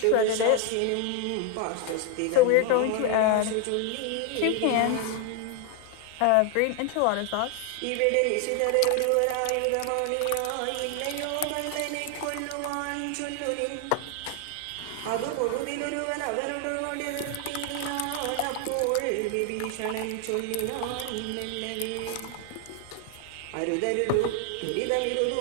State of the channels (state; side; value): different; both; correlation 0.00